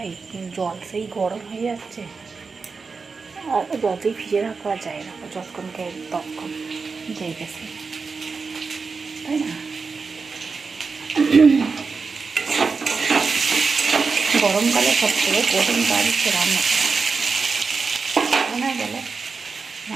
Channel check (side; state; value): left; quieter; 4.7 dB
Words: জল সেই গরম হয়ে যাচ্ছে, আর যতই ভিজে রাখা যায় না, যতক্ষণ খাই ততক্ষণ যেই গেছে, তাই না? গরমকালে সবথেকে কঠিন কাজ হচ্ছে রান্না করা। মনে গেলে